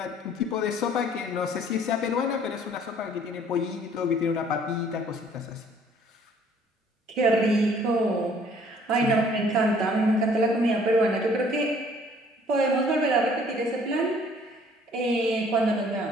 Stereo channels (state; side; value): normal; both; correlation 0.58